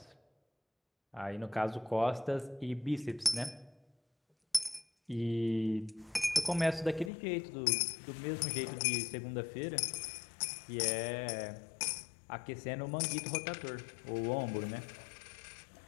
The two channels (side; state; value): right; drops out; at 7.1 s